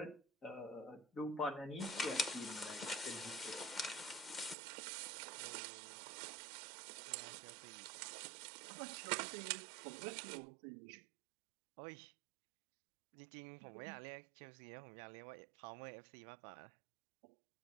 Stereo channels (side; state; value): left; drops out; at 4.5 s